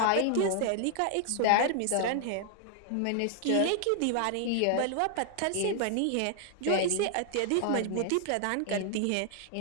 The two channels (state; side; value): different; both; correlation 0.00